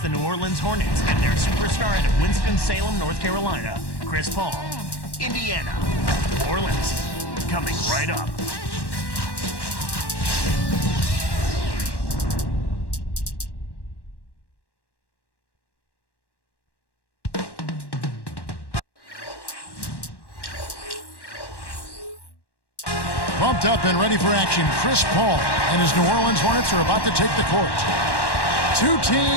the New Orleans Hornets and their superstar out of Winston-Salem, North Carolina, Chris Paul. Indiana. New Orleans. Coming right up. Pumped up and ready for action, Chris Paul and his New Orleans Hornets are about to take the court. Two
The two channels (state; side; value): late; right; 1.1 ms